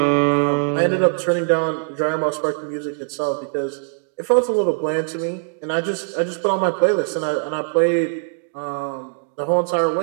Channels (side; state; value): left; silent; 65 dB below the other